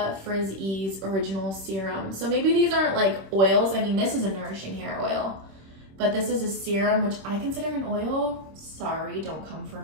Frizz Ease Original Serum. So maybe these aren't like oils. I mean, this is a nourishing hair oil, but this is a serum, which I consider an oil. Sorry, don't come for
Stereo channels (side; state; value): left; late; 26 ms